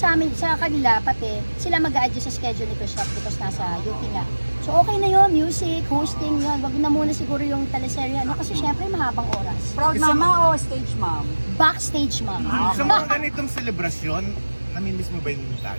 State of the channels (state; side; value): inverted; both; correlation -1.00